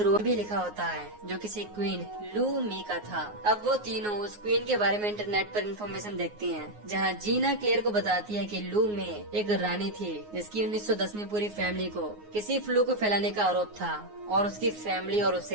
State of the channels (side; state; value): left; late; 9.6 ms